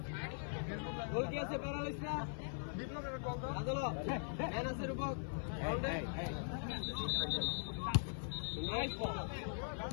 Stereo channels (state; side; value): silent; right; 50 dB below the other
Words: গোল কি আছে? প্যারালাইজ না? বিপ্লবের গোল দাও। আদলো ম্যান আছে রূপক। গোল দে। Nice ball.